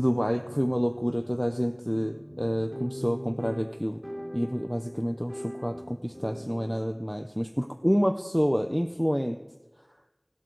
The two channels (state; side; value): identical; both; correlation 1.00